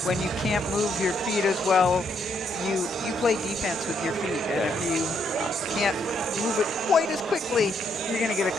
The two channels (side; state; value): both; normal; correlation 0.74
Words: When you can't move your feet as well, you play defense with your feet. And if you can't move it quite as quickly, you're going to get a